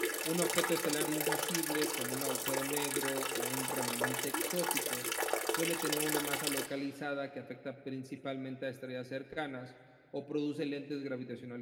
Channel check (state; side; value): identical; both; correlation 1.00